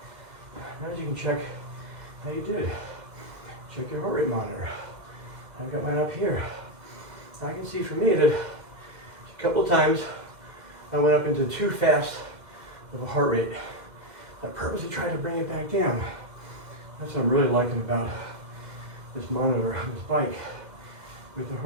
Now you can check how you did. Check your heart rate monitor. I've got mine up here. I can see for me that a couple of times I went up into too fast of a heart rate. I purposely tried to bring it back down. That's what I'm really liking about this monitor on this bike. With the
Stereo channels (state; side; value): late; left; 2.1 ms